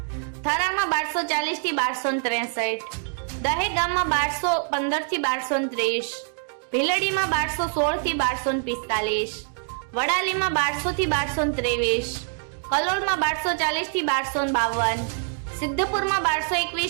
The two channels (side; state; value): left; silent; digital silence